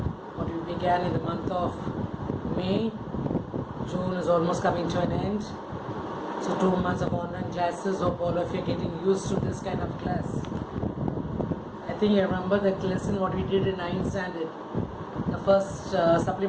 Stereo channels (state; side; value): identical; both; correlation 1.00